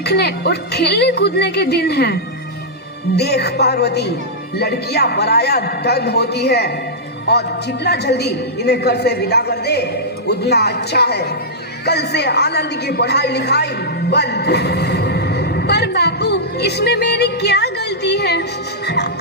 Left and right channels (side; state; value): both; normal; correlation -0.11